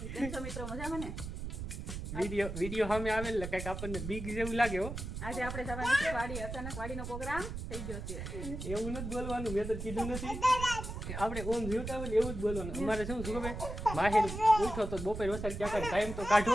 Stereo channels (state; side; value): noise; right; rumble, 7 dB below the sound